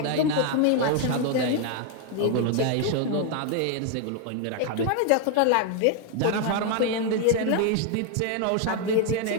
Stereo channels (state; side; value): different; both; correlation 0.01